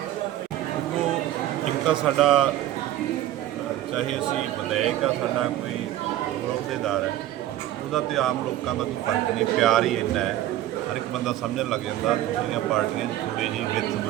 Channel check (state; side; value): quieter; left; 13.6 dB